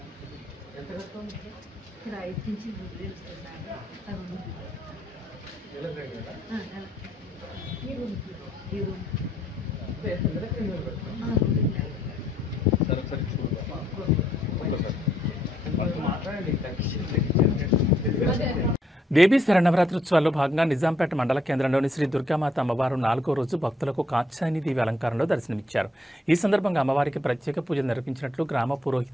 దేవీ శరణవరాత్రోత్సవాల్లో భాగంగా నిజాంపేట మండల కేంద్రంలోని శ్రీ దుర్గామాత అమ్మవారు 4వ రోజు భక్తులకు కాత్యాయని దేవి అలంకారంలో దర్శనమిచ్చారు. ఈ సందర్భంగా అమ్మవారికి ప్రత్యేక పూజలు నిర్వహించినట్లు గ్రామ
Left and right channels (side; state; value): both; normal; correlation 0.70